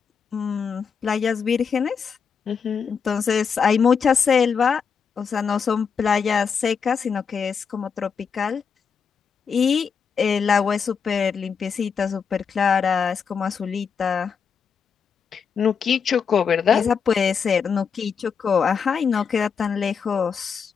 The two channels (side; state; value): right; quieter; 6.3 dB